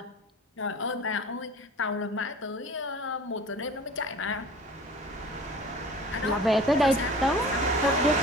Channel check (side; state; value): both; normal; correlation 0.42